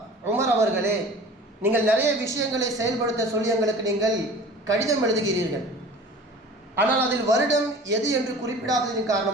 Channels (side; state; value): both; normal; correlation 0.42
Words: உமர் அவர்களே, நீங்கள் நிறைய விஷயங்களை செயல்படுத்த சொல்லி எங்களுக்கு நீங்கள் கடிதம் எழுதுகிறீர்கள். ஆனால் அதில் வருடம் எது என்று குறிப்பிடாததின்